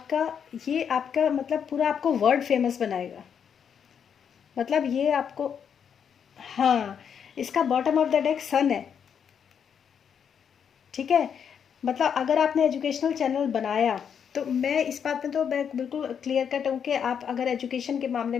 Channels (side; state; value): right; quieter; 7.6 dB